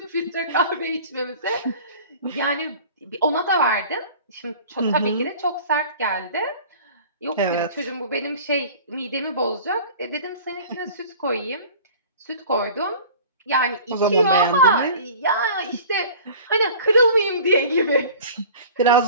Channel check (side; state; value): both; inverted; correlation -0.43